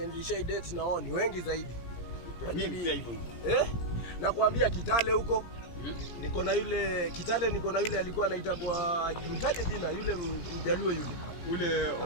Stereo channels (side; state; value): right; late; 17 ms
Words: nilishai date na wao ni wengi zaidi. Mimi pia hivyo. Nakwambia Kitale huko. Niko na yule alikuwa anaitwa mtaje jina yule Mjaluo yule